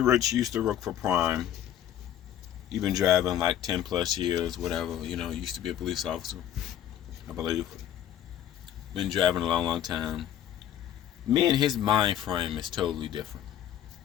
used to work for Prime. He's been driving like 10 plus years, whatever. You know, used to be a police officer, I believe. Been driving a long, long time. Me and his mind frame is totally different.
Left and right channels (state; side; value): quieter; right; 10.9 dB